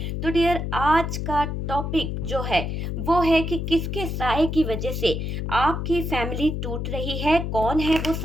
तो डियर, आज का टॉपिक जो है वो है कि किसके साए की वजह से आपकी फैमिली टूट रही है। कौन है वो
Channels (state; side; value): noise; left; hum, 3 dB below the sound